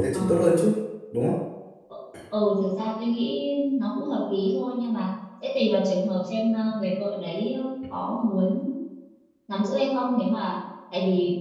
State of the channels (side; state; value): both; identical; correlation 1.00